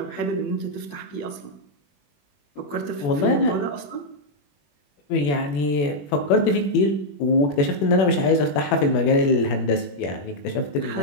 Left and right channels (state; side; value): late; right; 21 ms